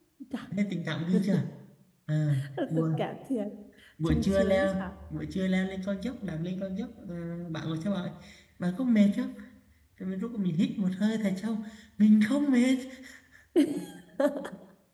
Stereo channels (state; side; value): identical; both; correlation 1.00